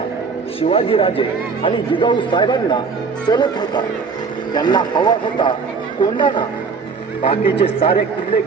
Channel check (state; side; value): quieter; left; 5.1 dB